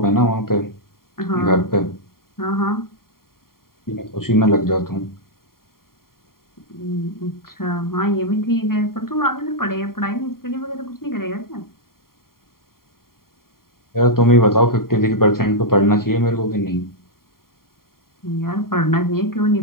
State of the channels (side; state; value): right; late; 0.93 ms